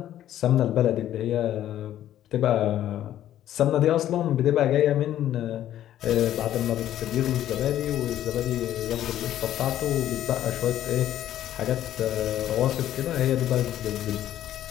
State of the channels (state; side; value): quieter; right; 12.1 dB